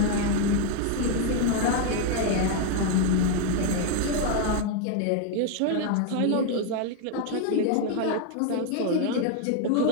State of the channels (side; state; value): both; different; correlation 0.01